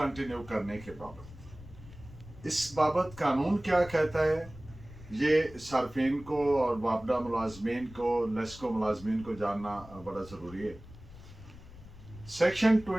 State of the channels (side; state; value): left; noise; rumble, 18 dB below the sound